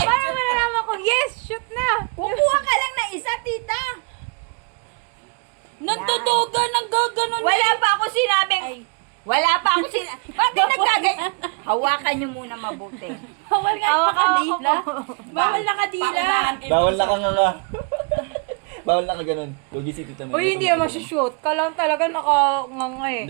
malalaman ko? Yes, shoot na! Kukuha ka lang ng isa, tita. Nagtutugan ng gaganon. Wala pa ako sinabing. Wala pa ako sinabing. Bakit nagkagay? Hawakan niyo muna mabuti. Bawal nga Hawak-hawak ko nakadila. po. Bawal nakadila. Bawal na kang ano. Bawal na ka ganun. Lugi si Tita May. Uy, hindi naman shoot. Kailangan talaga nakanganga eh.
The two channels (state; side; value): quieter; left; 34.5 dB